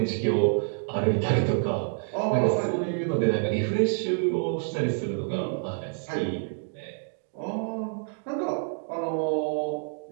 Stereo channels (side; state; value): left; silent; digital silence